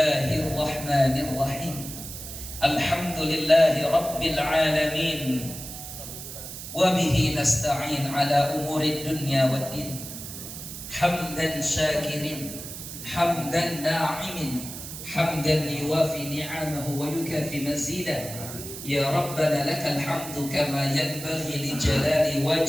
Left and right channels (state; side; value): noise; right; hiss, 10 dB below the sound